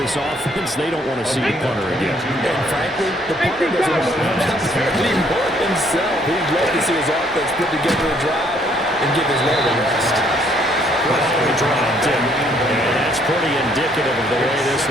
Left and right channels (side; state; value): both; normal; correlation 0.66